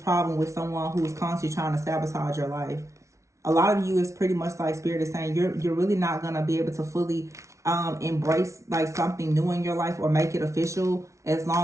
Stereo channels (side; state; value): left; late; 0.14 ms